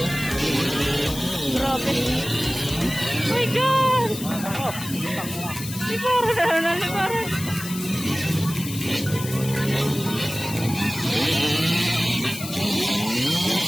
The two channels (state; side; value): noise; left; hiss, 10 dB below the sound